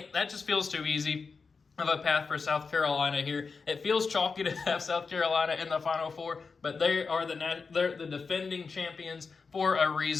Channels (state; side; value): quieter; right; 4.8 dB